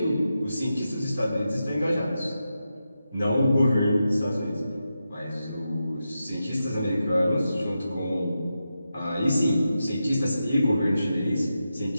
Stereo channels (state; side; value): inverted; both; correlation -0.89